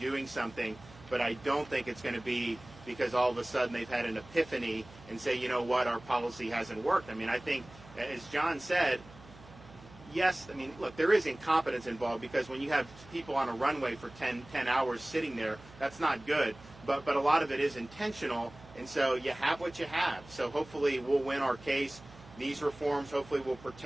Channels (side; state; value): right; noise; hum, 20 dB below the sound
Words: something. But I don't think it's going to be because all of a sudden they've had an epiphany and say, you know what, our policy hasn't worked. I mean, I think, as John said, yes, I mean, look, there is incompetence involved, because when you have people on a runway for 10 hours sitting there, that's not good. But a lot of it is intentional, and so you have what you have. So hopefully we'll win our case. These reforms hopefully will